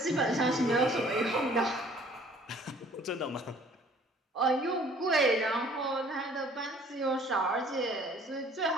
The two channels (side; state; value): both; normal; correlation 0.55